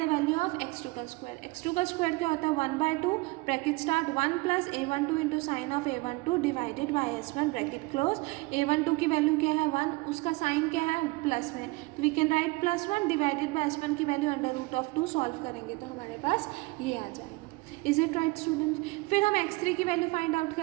the value of x2 का स्क्वायर। x2 का स्क्वायर क्या होता है, 1/2 bracket start 1 plus A12 into sine of A12 divided by S1 bracket close. A12 की वैल्यू क्या है 1, उसका साइन क्या है प्लस में, तो we can write +1 divided by S1 की value under root of 2। Solve करेंगे तो हमारे पास ये आ जाएगा। Is it right student? फिर हम x3 की वैल्यू फाइंड आउट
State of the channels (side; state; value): left; quieter; 24.0 dB